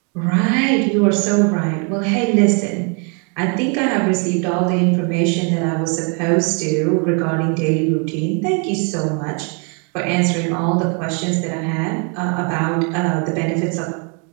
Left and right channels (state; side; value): quieter; left; 36.9 dB